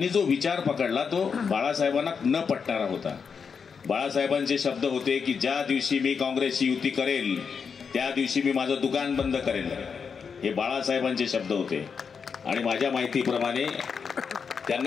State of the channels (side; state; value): right; quieter; 6.0 dB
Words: जो विचार पकडला तो बाळासाहेबांना न पटणारा होता. बाळासाहेबांचे शब्द होते की ज्या दिवशी मी काँग्रेसची युती करेल त्या दिवशी मी माझं दुकान बंद करेल. हे बाळासाहेबांचे शब्द होते. आणि माझ्या माहितीप्रमाणे